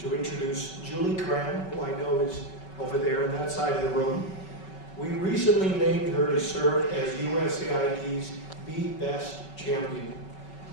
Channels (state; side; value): late; right; 5.3 ms